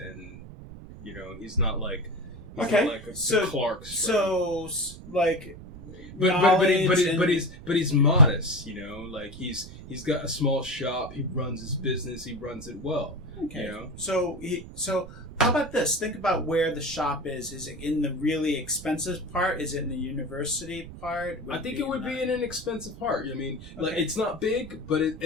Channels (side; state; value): right; noise; rumble, 14 dB below the sound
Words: he's not like a Clark's friend. So like, but he's modest, like he's got a small shop, he runs his business, he runs it well. Okay. So how about this? Think about where the shop is. Is it in the really expensive part? Is it in the university part? I think it would be in an expensive part. I mean, like, it's not big, but